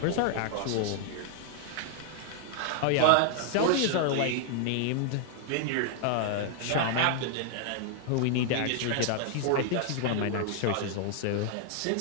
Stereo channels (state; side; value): different; both; correlation 0.00